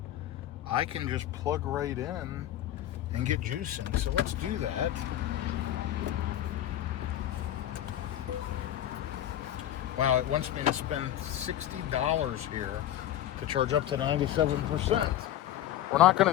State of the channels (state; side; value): quieter; right; 12.3 dB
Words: I can just plug right in and get juicing. So let's do that. Wow, it wants me to spend $60 here to charge up to 97%. We're not